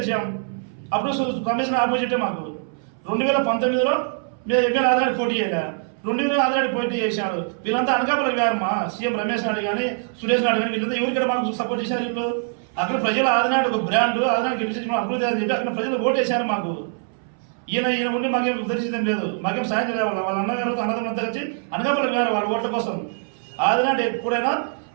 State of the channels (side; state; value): left; silent; 61 dB below the other